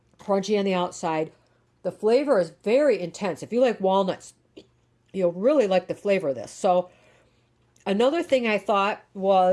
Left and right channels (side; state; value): both; identical; correlation 1.00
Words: crunchy on the outside. The flavor is very intense. If you like walnuts, you'll really like the flavor of this. So another thing I thought